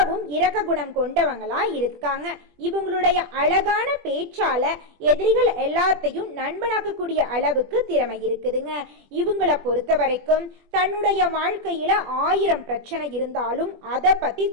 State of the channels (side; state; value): left; late; 20 ms